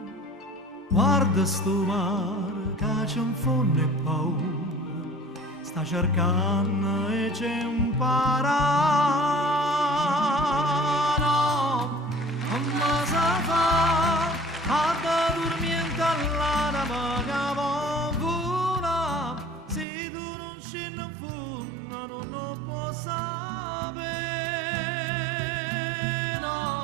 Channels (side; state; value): left; drops out; at 19.9 s